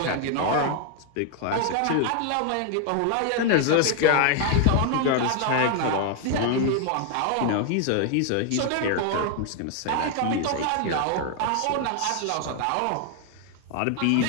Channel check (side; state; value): both; different; correlation 0.01